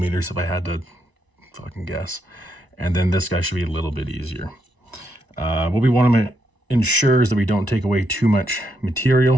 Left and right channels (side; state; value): left; late; 1.0 ms